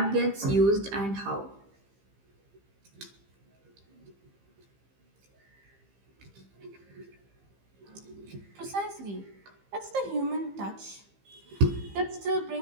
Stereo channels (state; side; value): late; left; 15 ms